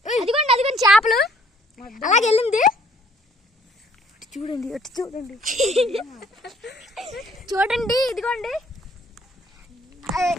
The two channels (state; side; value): normal; both; correlation 0.61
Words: అదిగోండి అదిగోండి చేపలు అలాగే వెళ్ళింది. చూడండి అటు చూడండి చూడండి ఇదిగోండి.